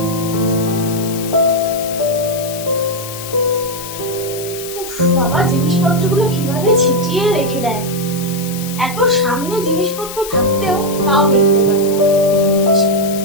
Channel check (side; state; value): left; noise; hiss, 11 dB below the sound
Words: বাবা, জিনিসপত্রগুলো কিভাবে ছিটিয়ে রেখে দেয়, এত সামনে জিনিসপত্র থাকতেও তাও দেখতে পায় না।